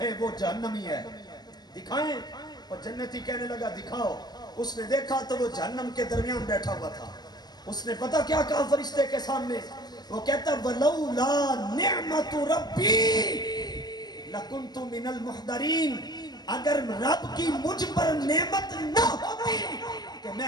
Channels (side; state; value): right; late; 0.20 ms